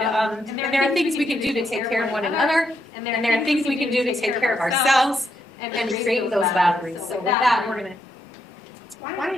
are things we can do to take care of one another, and there are things we can do to take care of ourselves and create those boundaries. So with that, we're going to.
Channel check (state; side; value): normal; both; correlation 0.79